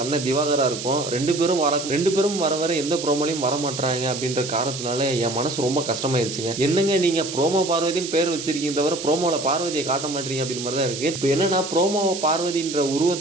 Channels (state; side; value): noise; right; hiss, 8 dB below the sound